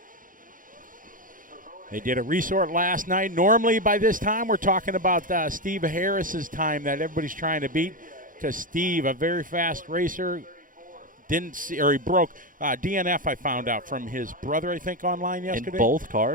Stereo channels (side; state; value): left; late; 0.39 ms